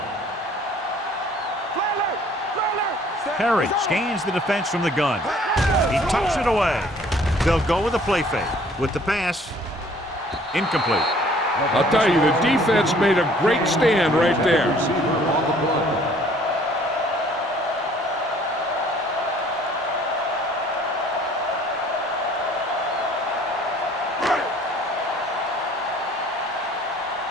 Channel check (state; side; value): normal; both; correlation 0.56